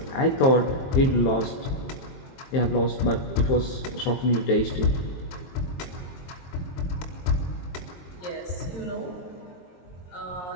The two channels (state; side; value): late; right; 23 ms